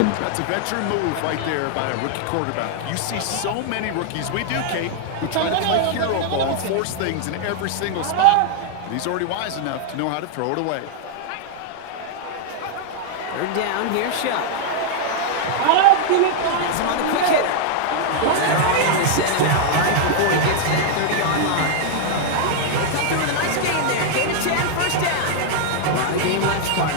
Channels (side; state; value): both; different; correlation 0.00